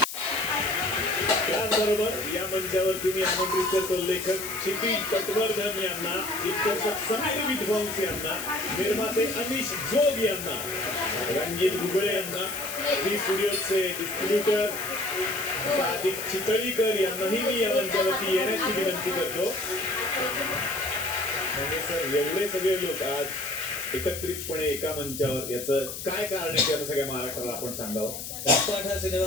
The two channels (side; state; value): left; noise; hiss, 8 dB below the sound